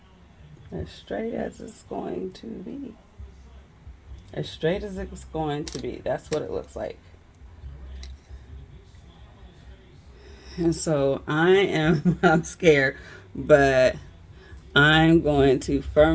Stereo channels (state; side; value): identical; both; correlation 1.00